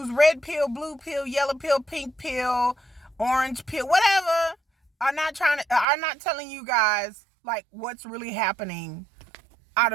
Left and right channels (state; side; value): drops out; left; at 5.9 s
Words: red pill, blue pill, yellow pill, pink pill, orange pill, whatever, are not telling you guys like what's really happening out